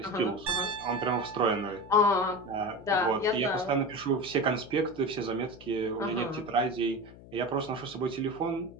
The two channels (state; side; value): noise; left; hum, 19 dB below the sound